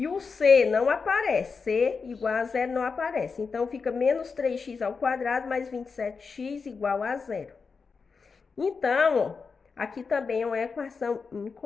o C não aparece, C igual a 0 não aparece. Então, fica menos 3x ao quadrado mais 27x igual a 0. Então, ó, aqui também é uma equação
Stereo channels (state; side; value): quieter; right; 5.0 dB